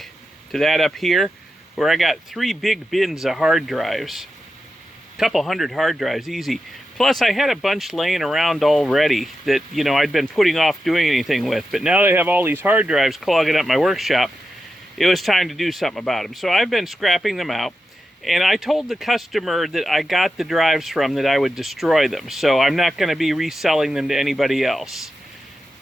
to that up here, where I got 3 big bins of hard drives. A couple hundred hard drives, easy. Plus, I had a bunch laying around already that, I'd been putting off doing anything with. But now they have all these hard drives clogging up my workshop, it was time to do something about them. So I've been scrapping them out, and I told the customer that I got the drives from that I would destroy them. So I'm not going to be reselling them to anybody else.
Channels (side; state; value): both; normal; correlation 0.90